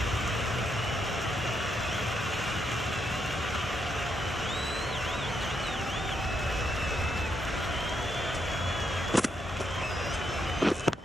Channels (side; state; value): both; normal; correlation 0.79